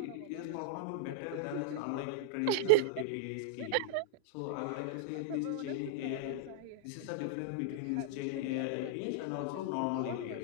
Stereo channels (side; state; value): both; different; correlation -0.01